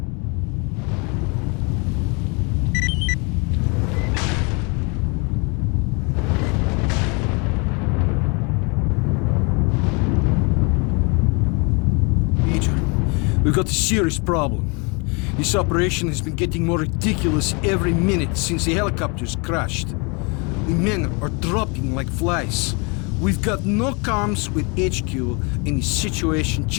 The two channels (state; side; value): quieter; right; 31.6 dB